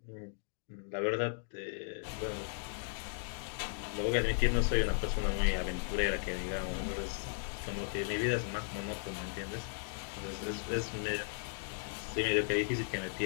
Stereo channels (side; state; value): right; silent; digital silence